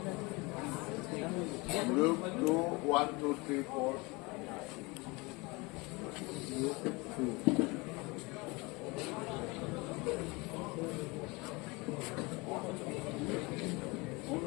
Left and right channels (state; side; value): quieter; right; 25.7 dB